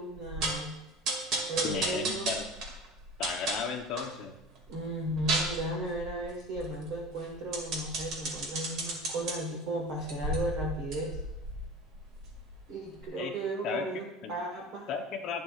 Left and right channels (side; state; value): both; normal; correlation 0.36